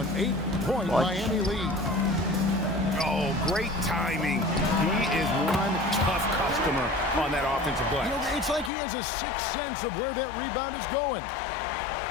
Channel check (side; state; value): right; drops out; at 8.7 s